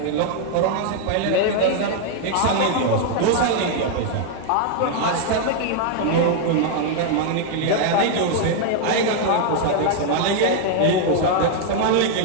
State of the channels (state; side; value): different; both; correlation 0.00